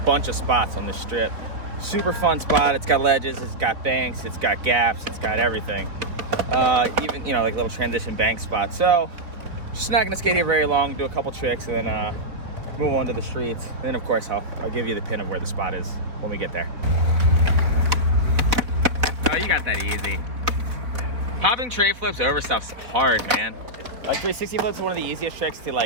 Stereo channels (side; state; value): left; late; 4.0 ms